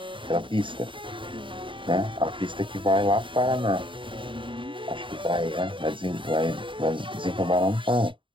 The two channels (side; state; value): left; late; 0.24 ms